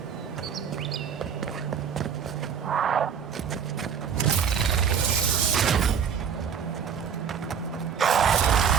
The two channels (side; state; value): left; quieter; 7.3 dB